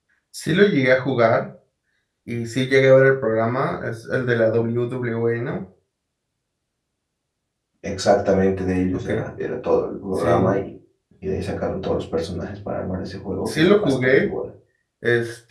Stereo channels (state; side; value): identical; both; correlation 1.00